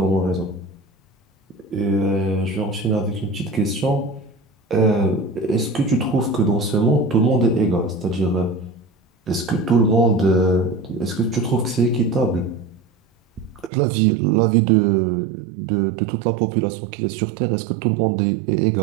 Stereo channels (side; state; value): left; drops out; at 13.7 s